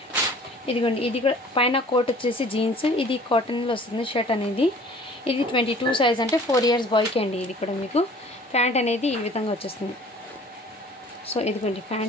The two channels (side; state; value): both; normal; correlation 0.50